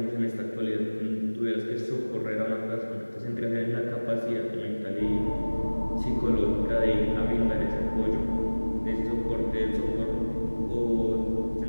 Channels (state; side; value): inverted; both; correlation -1.00